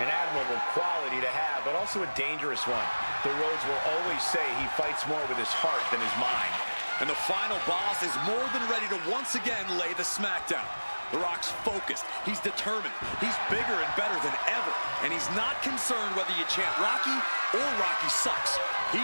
An admirable quality to have, but also a dangerous one. The Rhodes will always say he fights more with his heart than his mind. And the final boss is more than ready to once again lay the smackdown. The Rock's focused. He's determined. He's bigger and better than ever. And he's not concerned whether you chant Rocky or Rocky sucks.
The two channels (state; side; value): inverted; both; correlation -1.00